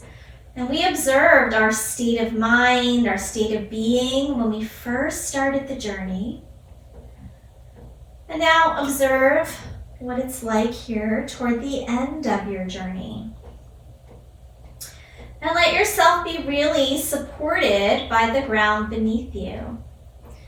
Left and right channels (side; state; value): both; identical; correlation 1.00